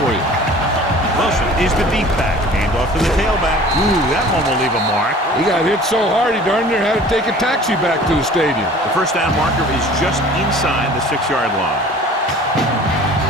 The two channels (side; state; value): both; normal; correlation 0.46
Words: for you. Wilson is the deep back. Hand off to the tailback. Ooh, that one will leave a mark. He got hit so hard he darn near had to take a taxi back to the stadium. The 1st down marker is just inside the 6-yard line.